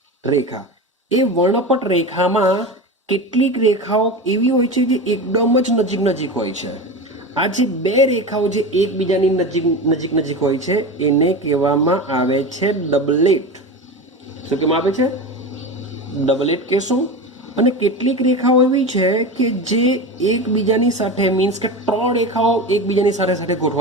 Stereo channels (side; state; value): both; normal; correlation 0.25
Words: રેખા, એ વર્ણપટ રેખામાં કેટલીક રેખાઓ એવી હોય છે જે એકદમ જ નજીક હોય છે. આ જે બે રેખાઓ જે એકબીજાની નજીક હોય છે એને કહેવામાં આવે છે ડબલેટ. શું કહેવામાં આવે છે? ડબલેટ કહેશું. અને કેટલીક રેખાઓ એવી છે કે જે એકબીજાની સાથે, મીન્સ કે 3 રેખાઓ એકબીજાની સાથે